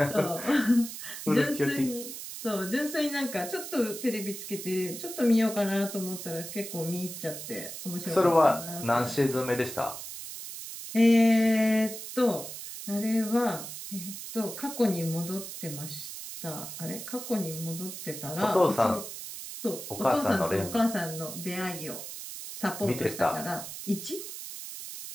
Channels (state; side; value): noise; right; hiss, 9 dB below the sound